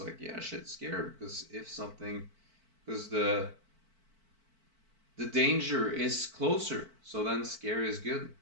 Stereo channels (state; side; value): late; left; 4.5 ms